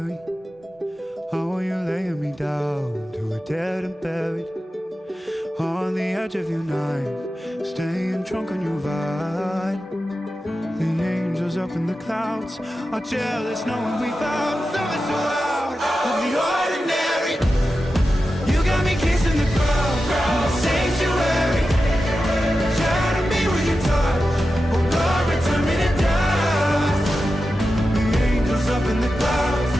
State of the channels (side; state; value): both; normal; correlation 0.92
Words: How are you laying me down to a dead and buried on the edge of your night, staying drunk on your vine. The angels up in the clouds are jealous knowing we found something so out of the ordinary. You got me kissing the ground in the sanctuary.